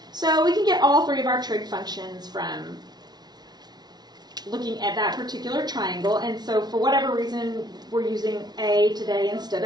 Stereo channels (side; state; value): left; late; 0.19 ms